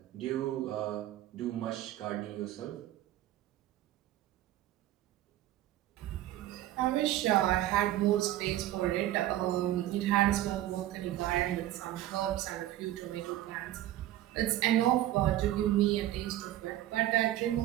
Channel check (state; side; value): quieter; left; 14.0 dB